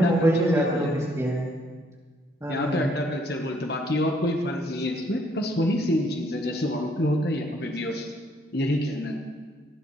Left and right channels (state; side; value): normal; both; correlation 0.67